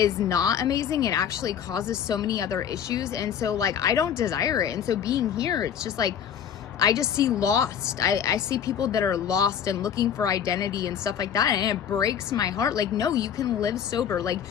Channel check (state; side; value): quieter; right; 8.7 dB